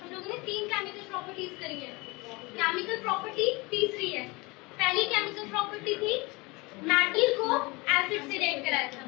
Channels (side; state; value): right; quieter; 25.0 dB